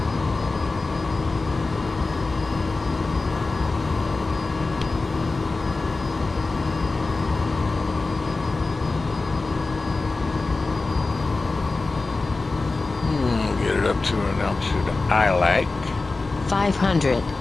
Get it up to an altitude I like. 500.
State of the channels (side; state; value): right; quieter; 3.6 dB